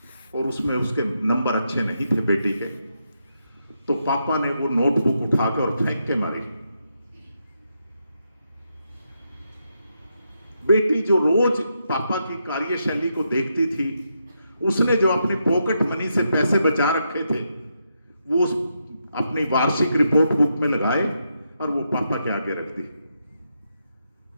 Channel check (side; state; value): both; inverted; correlation -0.82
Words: और उसमें उसके नंबर अच्छे नहीं थे बेटी के, तो पापा ने वो नोटबुक उठाकर और फेंक के मारी। बेटी जो रोज पापा की कार्यशैली को देखती थी, उसने जो अपनी पॉकेट मनी से पैसे बचा रखे थे वो अपनी वार्षिक रिपोर्ट बुक में लगाए और वो पापा के आगे रख दी।